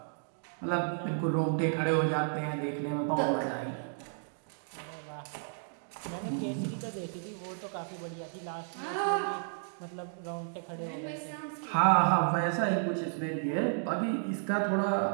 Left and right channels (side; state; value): left; silent; digital silence